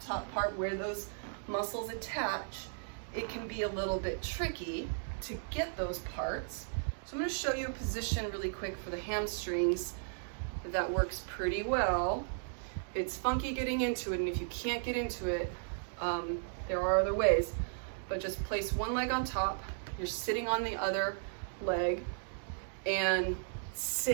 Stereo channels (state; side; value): silent; left; digital silence